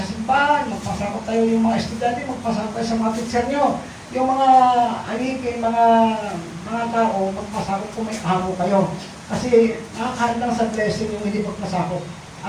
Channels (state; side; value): identical; both; correlation 1.00